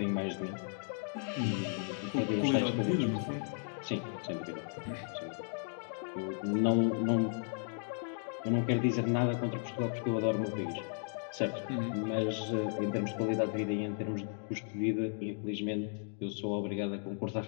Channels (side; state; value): right; silent; 54 dB below the other